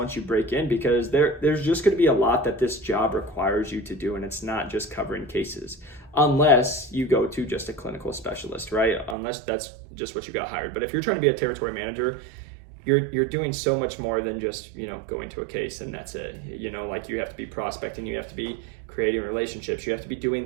you break in, because there's just going to be a lot that this job requires you to do. And it's not just covering cases, unless you go to just a clinical specialist, right? Unless that's just what you got hired. But if you're trying to be a territory manager, you're doing so much more than just, going to a case and that's it. You have to be prospecting, you have to be creating relationships, you have to be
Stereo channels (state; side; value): drops out; left; at 9.2 s